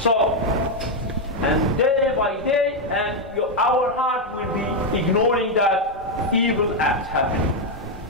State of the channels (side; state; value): both; normal; correlation 0.02